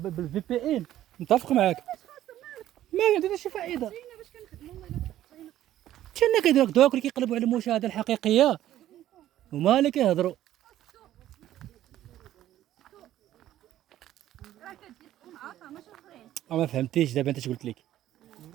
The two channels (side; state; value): left; quieter; 13.0 dB